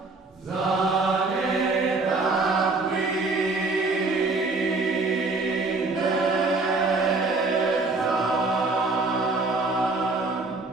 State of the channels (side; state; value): left; quieter; 3.5 dB